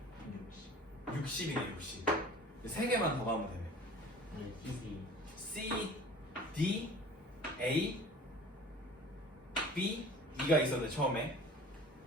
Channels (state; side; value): normal; both; correlation 0.44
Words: 60이네 60. 3개만 더 가면 되네. C, D, A, B, E가 있었는데 처음에